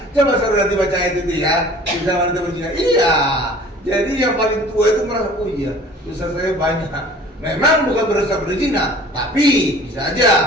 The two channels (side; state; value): both; normal; correlation 0.47